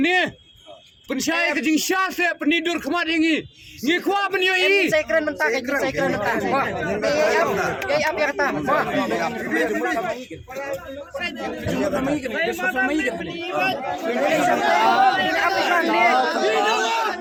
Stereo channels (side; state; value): both; identical; correlation 1.00